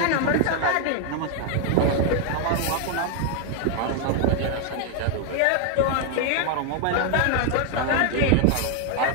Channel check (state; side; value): different; both; correlation 0.01